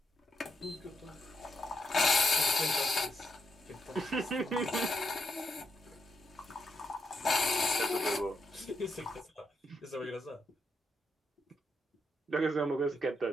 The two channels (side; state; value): both; normal; correlation 0.81